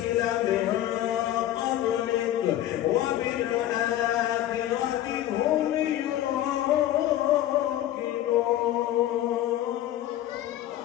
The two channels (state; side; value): quieter; right; 13.0 dB